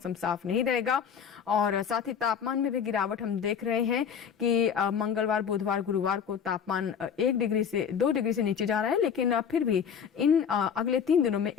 साफ नहीं रहेगा। और साथ ही तापमान में भी गिरावट हम देख रहे हैं कि मंगलवार, बुधवार, गुरुवार को तापमान 1 डिग्री से 2 डिग्री से नीचे जा रहा है, लेकिन फिर भी इन अगले 3 दिनों में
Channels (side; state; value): right; quieter; 7.4 dB